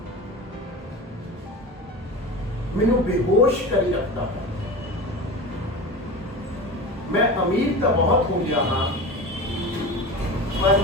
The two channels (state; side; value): normal; both; correlation 0.30